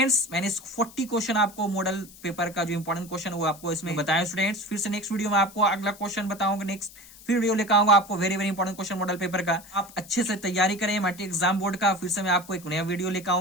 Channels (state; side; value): noise; left; hiss, 20 dB below the sound